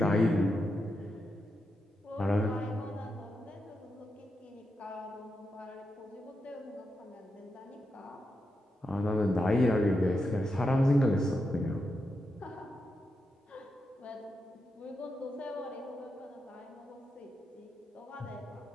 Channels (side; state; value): both; normal; correlation 0.86